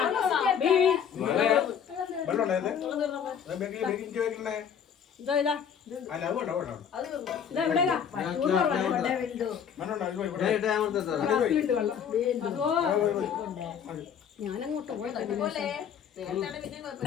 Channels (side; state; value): right; quieter; 7.9 dB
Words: ബീ. വെള്ളമുണ്ടോ ഇത്? ബേക്കിംഗ് വെക്കണേ. ഇതാ ഇതാ. അല്ല അത് വേണ്ട വേണ്ട. അത് തിന്നു. ഇതാ എവിടെയാ? വെള്ളമുണ്ടോ ഞാൻ ഇട്ടേ അമർത്തട്ടെ. വെള്ളം. അതോ ഞാനങ്ങോട്ട് പോയത് പോലെ നേരത്തെ പിന്നെ